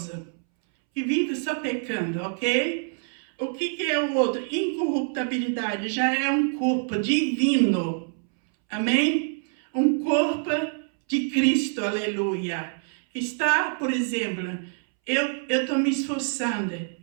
que vive só pecando, ok? O que é o outro? Incorruptibilidade já é um corpo divino, amém? Um corpo de Cristo, aleluia. Está, por exemplo, eu estou me esforçando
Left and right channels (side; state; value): left; silent; 61 dB below the other